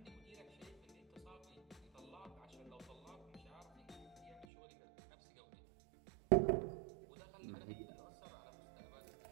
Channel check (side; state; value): left; drops out; at 4.5 s